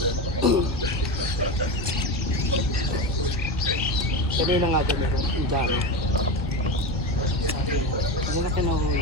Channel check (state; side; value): normal; both; correlation 0.20